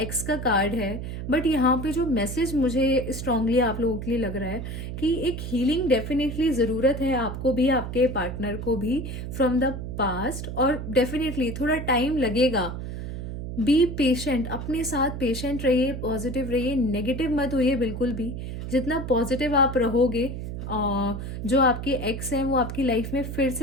एक्स का कार्ड है. But यहाँ पे जो मैसेज मुझे स्ट्रांगली आप लोगों के लिए लग रहा है कि एक हीलिंग डेफिनेटली ज़रूरत है आपको भी, आपके पार्टनर को भी, फ्रॉम द पास्ट. और डेफिनेटली थोड़ा टाइम लगेगा. बी पेशेंट, अपने साथ पेशेंट रहिए, पॉजिटिव रहिए, नेगेटिव मत होइए बिल्कुल भी. जितना पॉजिटिव आप रहोगे, जो आपके एक्स हैं वो आपकी लाइफ में फिर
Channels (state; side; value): noise; right; hum, 6 dB below the sound